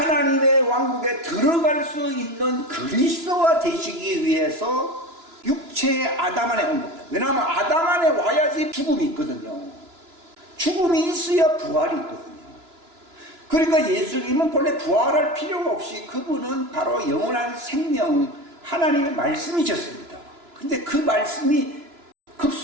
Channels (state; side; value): late; left; 2.9 ms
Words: 왕국에 들어갈 수 있는 그리스도가 되시기 위해서 육체의 아담 안에 온 겁니다. 왜냐하면 아담 안에 와야지 죽음이 있거든요. 죽음이 있어야 부활이 있거든요. 그러니까 예수님은 본래 부활할 필요가 없이 그분은 바로 영원한 생명, 하나님의 말씀이셨습니다. 근데 그 말씀이